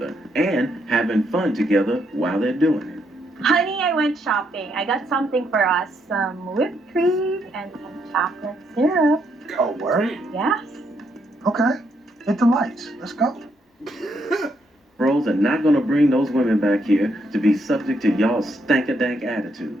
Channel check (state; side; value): normal; both; correlation 0.76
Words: and having fun together while they're doing it. Honey, I went shopping. I got something for us. Some whipped cream and some chocolate syrup. Oh, word? Yes. Okay. Hit the lights. Let's go. Bros are not going to bring those women back here to be subject to y'all's stank-a-dank